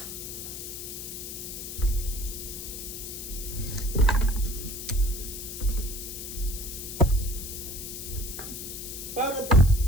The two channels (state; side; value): noise; left; hiss, 8 dB below the sound